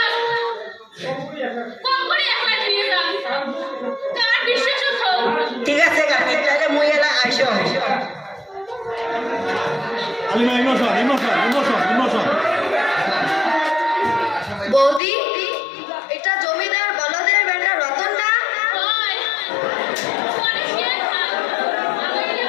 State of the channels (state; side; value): drops out; right; at 15.0 s